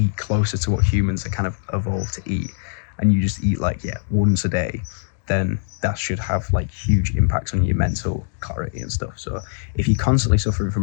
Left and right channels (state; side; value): silent; right; digital silence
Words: closer to what humans are kind of evolved to eat, and you just eat like, yeah, once a day, then that should have like huge impacts on your mental clarity and stuff. So if you're constantly suffering